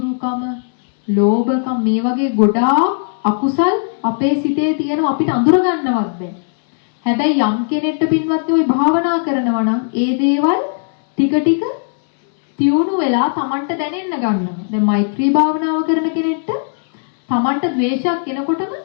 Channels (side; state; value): right; silent; digital silence